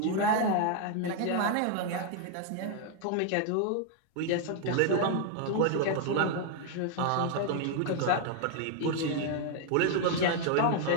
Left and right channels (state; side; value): different; both; correlation 0.00